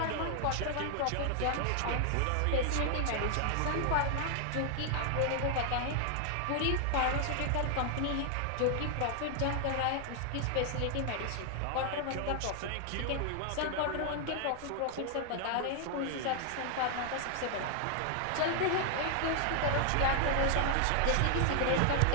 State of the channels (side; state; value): both; different; correlation 0.00